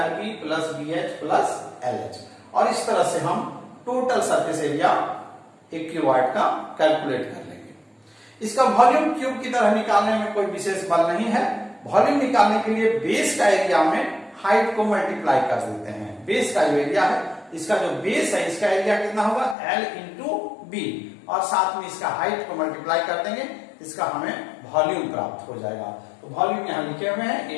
LB plus BH plus LH, और इस तरह से हम टोटल सरफेस एरिया एक क्यूबॉइड का कैलकुलेट कर लेंगे। इसका वॉल्यूम क्यूब की तरह निकालने में कोई विशेष बल नहीं है। वॉल्यूम निकालने के लिए बेस का एरिया में हाइट को मल्टीप्लाई कर देते हैं। बेस का जो एरिया है, इसका जो बेस है इसका एरिया कितना होगा L इंटू बी, और साथ में इसका हाइट को मल्टीप्लाई कर देंगे, इसका हमें वॉल्यूम प्राप्त हो जाएगा। तो वॉल्यूम यहां लिखे हुए हैं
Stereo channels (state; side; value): drops out; right; at 19.6 s